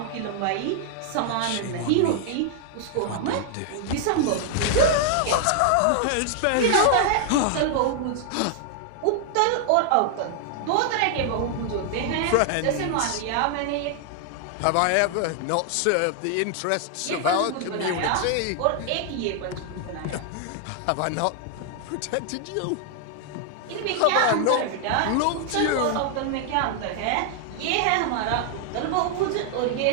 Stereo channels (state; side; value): different; both; correlation 0.00